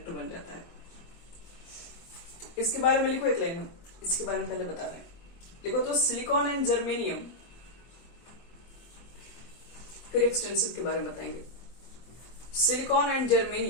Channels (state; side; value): late; right; 24 ms